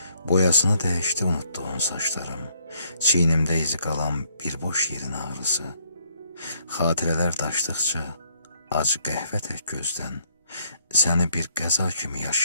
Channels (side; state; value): both; inverted; correlation -0.68